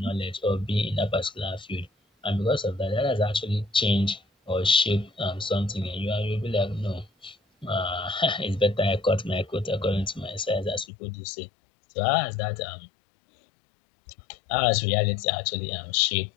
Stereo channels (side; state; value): right; drops out; at 10.9 s